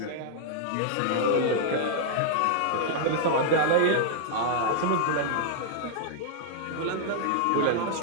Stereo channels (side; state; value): both; different; correlation -0.01